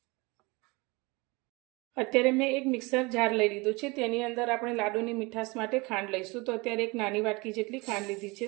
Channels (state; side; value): quieter; left; 25.6 dB